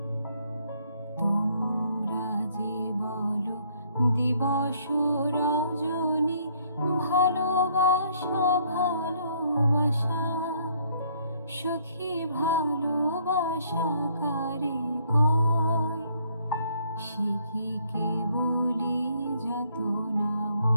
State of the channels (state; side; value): inverted; both; correlation -0.66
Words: তোমরা যে বলো দিবস রজনী, ভালোবাসা ভালোবাসা, সুখী ভালোবাসা কারে কয়? সে কি কেবলি যাতনাময়?